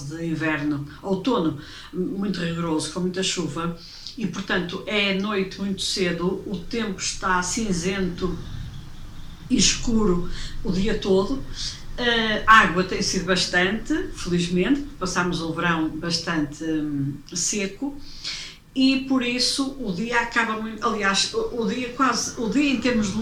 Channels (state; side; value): identical; both; correlation 1.00